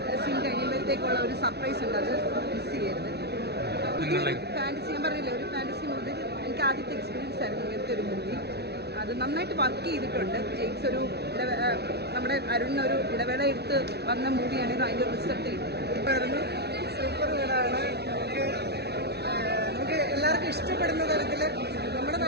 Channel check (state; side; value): late; left; 0.48 ms